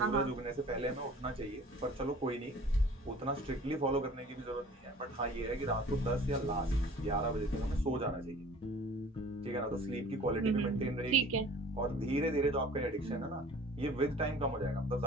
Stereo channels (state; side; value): normal; both; correlation 0.47